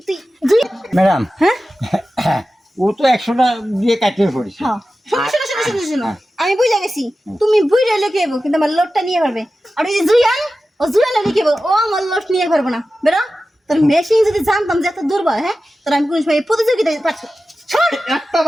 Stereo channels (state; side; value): normal; both; correlation 0.94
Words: তুই দুই ম্যাডাম হ্যাঁ ও তো 100টা দিয়ে কাটিয়ে পড়েছে। হ্যাঁ শোনো আমি বুঝে গেছি তুমি বুঝ রইলে কি হবে কিন্তু আমার লোটটা নিয়ে পারবে আর ওই যে জুয়ান ও জুয়ান হলে কি হবে ও আমার লোট নিয়ে পারবে না বেরো তোর মেশিন যদি জানতাম যে এত দুর্বল হ্যাঁ তোর আমি কোন সময় প্রতিযোগিতায় পাচ্ছি একটা